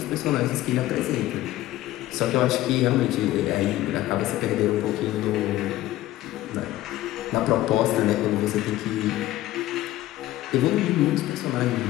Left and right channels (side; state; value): right; quieter; 15.4 dB